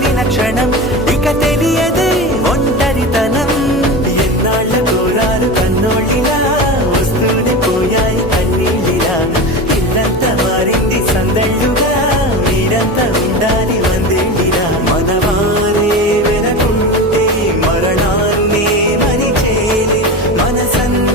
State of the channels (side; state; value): both; normal; correlation 0.26